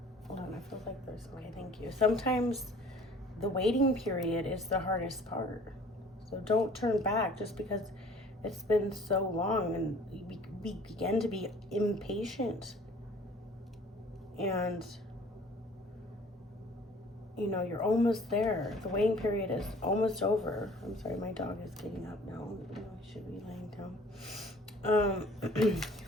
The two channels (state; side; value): normal; both; correlation 0.51